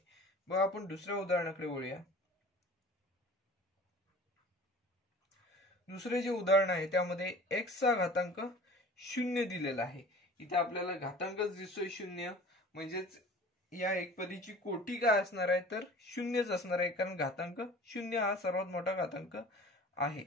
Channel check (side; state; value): both; normal; correlation 0.44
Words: बघा आपण दुसऱ्या उदाहरणाकडे वळूया। दुसरे जे उदाहरण आहे त्यामध्ये x चा घातांक 0 दिलेला आहे। इथे आपल्याला घातांकच दिसतोय 0, म्हणजेच या एकपदीची कोटी काय असणार आहे तर 0च असणार आहे, कारण घातांक 0 हा सर्वात मोठा घातांक आहे।